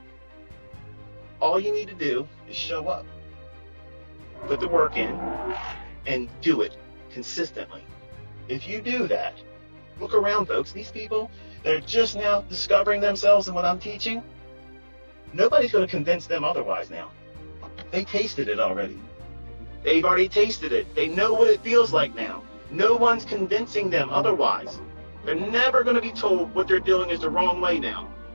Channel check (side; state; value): both; inverted; correlation -1.00